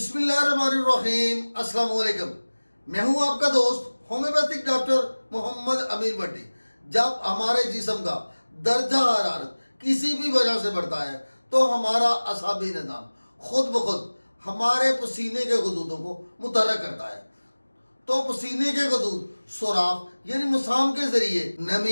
अस्सलाम वालेकुम। मैं हूं आपका दोस्त होम्योपैथिक डॉक्टर मोहम्मद अमीर भट्टी। जब हमारे जिस्म का दर्जा हरारत किसी भी वजह से बढ़ता है तो हमारा असाबी निज़ाम खुद ब खुद हमारे पसीने के गदूदों को मुतहर्रिक करता है। तो पसीने के गदूद सुराख यानी मसाम के ज़रिए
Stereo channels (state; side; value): inverted; both; correlation -1.00